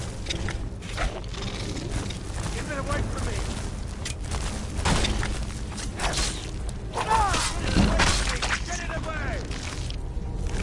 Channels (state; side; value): identical; both; correlation 1.00